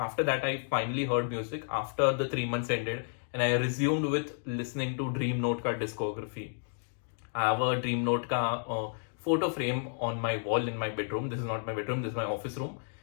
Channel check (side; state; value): right; silent; digital silence